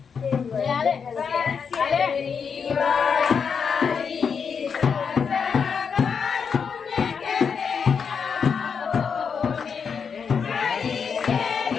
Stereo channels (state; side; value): quieter; right; 6.3 dB